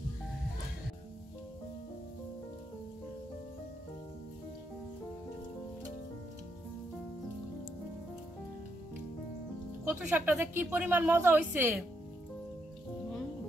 কচু শাকটা যে কি পরিমাণ মজা হয়েছে।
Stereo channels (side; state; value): both; normal; correlation 0.78